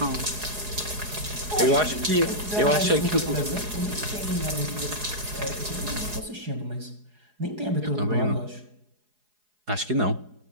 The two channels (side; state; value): left; late; 4.8 ms